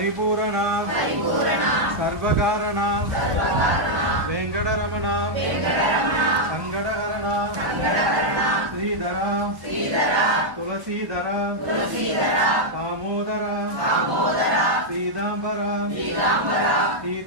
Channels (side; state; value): left; late; 1.0 ms